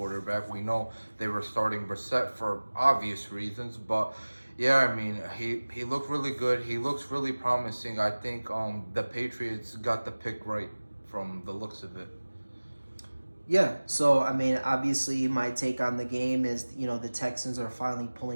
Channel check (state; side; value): inverted; both; correlation -1.00